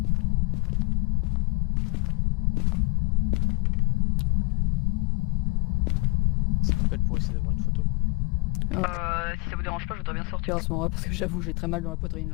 Ça m'appelle pour essayer d'avoir une photo. Si ça vous dérange pas, je voudrais bien sortir. Pire à ce moment-là, parce que j'avoue, j'ai très mal dans la poitrine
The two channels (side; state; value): right; quieter; 28.2 dB